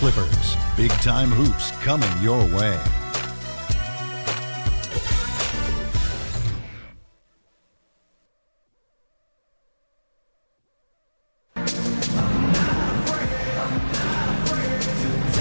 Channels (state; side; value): inverted; both; correlation -1.00